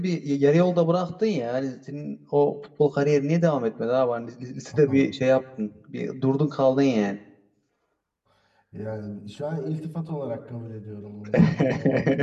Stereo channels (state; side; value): identical; both; correlation 1.00